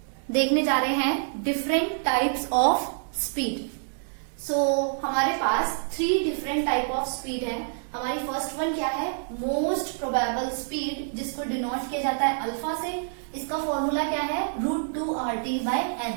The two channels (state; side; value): silent; left; digital silence